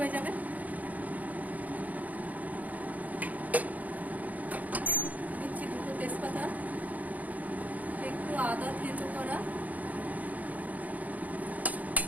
যাবে। দিচ্ছি দুটো তেজপাতা, একটু আদা থেঁতো করা,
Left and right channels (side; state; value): left; late; 0.076 ms